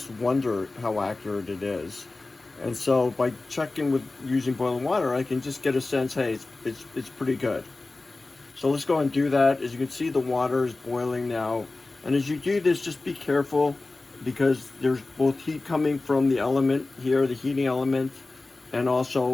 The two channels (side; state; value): right; quieter; 3.3 dB